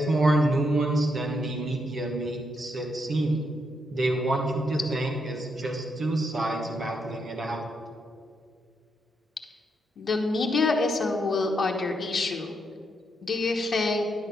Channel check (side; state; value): both; normal; correlation 0.79